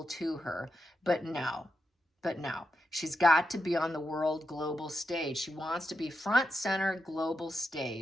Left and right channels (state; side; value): normal; both; correlation 0.86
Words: to her, but no. She's got to be on the world global stage. She wants to be front center global